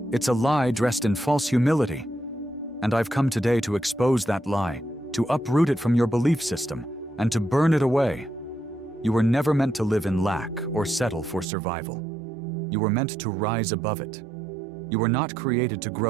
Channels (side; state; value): left; drops out; at 11.5 s